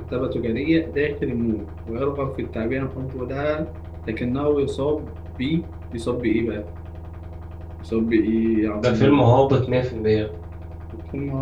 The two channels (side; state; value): both; identical; correlation 1.00